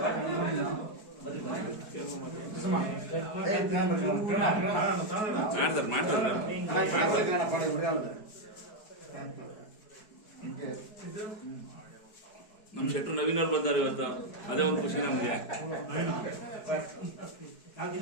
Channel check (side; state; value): right; late; 4.6 ms